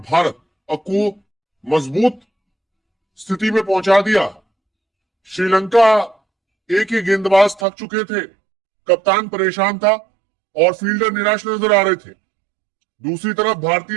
भारत को मजबूत स्थिति में पहुंचा दिया। श्रीलंका ए के गेंदबाज थक चुके थे, कप्तान परेशान था और फील्डर निराश नजर आ रहे थे। दूसरी तरफ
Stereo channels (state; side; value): drops out; left; at 7.7 s